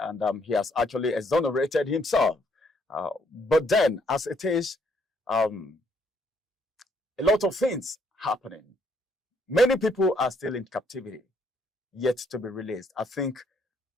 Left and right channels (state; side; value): normal; both; correlation 0.69